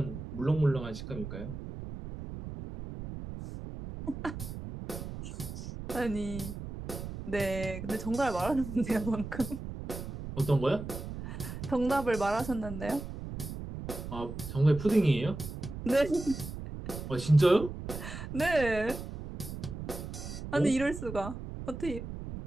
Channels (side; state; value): right; noise; rumble, 8 dB below the sound